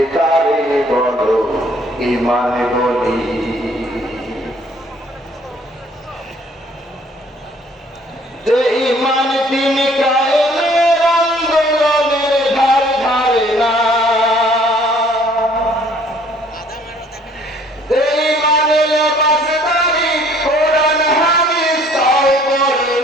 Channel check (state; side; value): normal; both; correlation 0.58